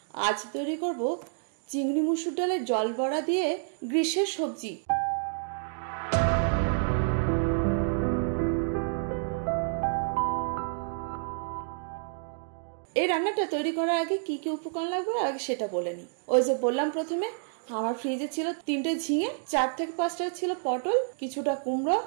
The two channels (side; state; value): left; silent; digital silence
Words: আজ তৈরি করব চিংড়ি মুসুর ডালের জল বড়া দিয়ে গ্রীষ্মের সবজি। এই রান্নাটা তৈরি করার আগে কি কি উপকরণ লাগবে আগে সেটা বলে নি। ওই যে বললাম প্রথমে আমার ফ্রিজে ছিল 3টে ঝিঙে, 4 থেকে 5টা ছিল পটল, কিছুটা কুমড়ো,